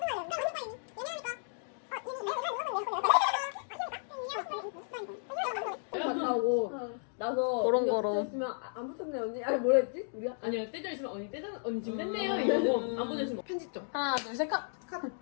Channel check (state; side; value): silent; right; digital silence